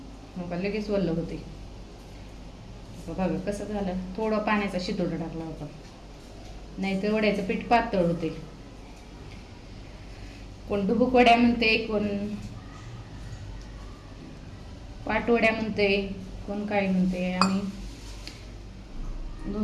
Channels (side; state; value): both; identical; correlation 1.00